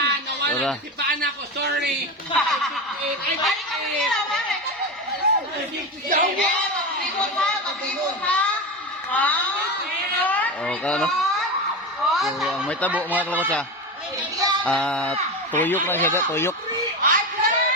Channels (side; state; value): both; normal; correlation 0.20